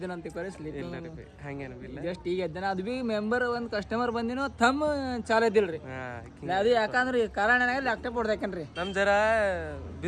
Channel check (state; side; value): identical; both; correlation 1.00